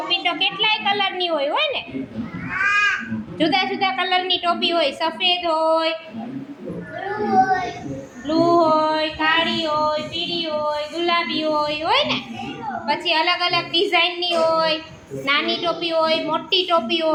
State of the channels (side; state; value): both; identical; correlation 1.00